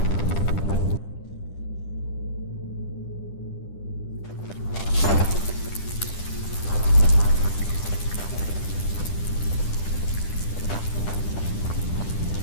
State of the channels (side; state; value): right; late; 10 ms